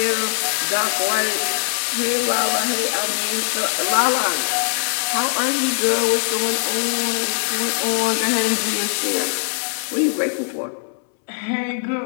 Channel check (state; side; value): silent; right; 65 dB below the other